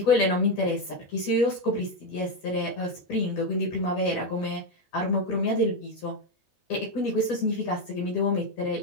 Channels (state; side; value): late; right; 11 ms